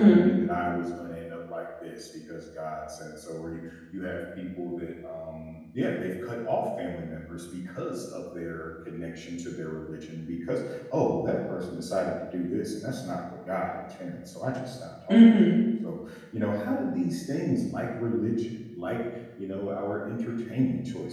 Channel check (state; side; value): identical; both; correlation 1.00